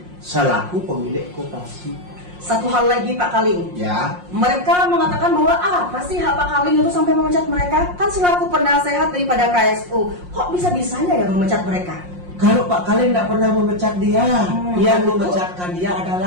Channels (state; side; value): late; left; 5.6 ms